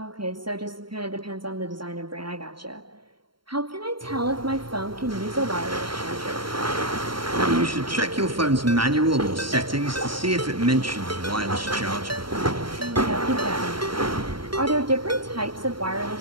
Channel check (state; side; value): late; left; 0.73 ms